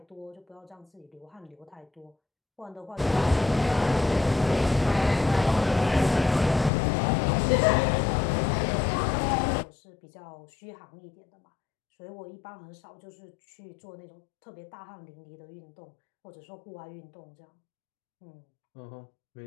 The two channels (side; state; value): right; drops out; at 6.7 s